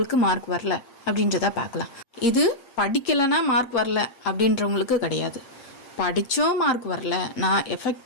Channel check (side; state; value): right; late; 8.7 ms